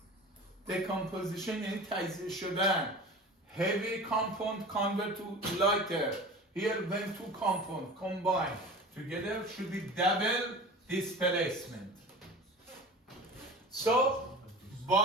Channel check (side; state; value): both; normal; correlation 0.36